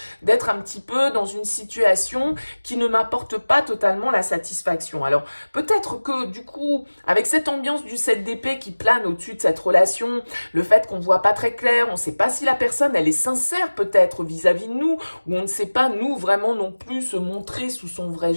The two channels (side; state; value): both; inverted; correlation -1.00